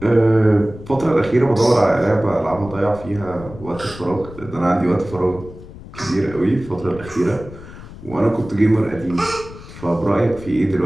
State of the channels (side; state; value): left; noise; rumble, 16 dB below the sound